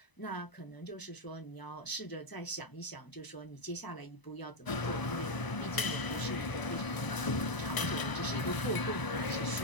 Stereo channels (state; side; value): late; right; 1.0 ms